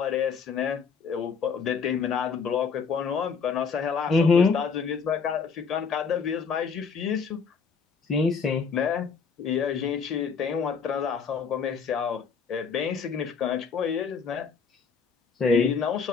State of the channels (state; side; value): quieter; right; 5.8 dB